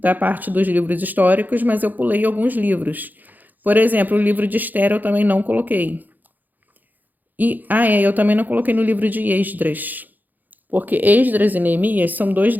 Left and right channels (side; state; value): left; late; 0.085 ms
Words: parte dos livros históricos, mas eu pulei alguns livros. Por exemplo, o livro de Esther eu também não coloquei. Eu também não coloquei no livro de Esdras, porque Esdras e Neemias são 2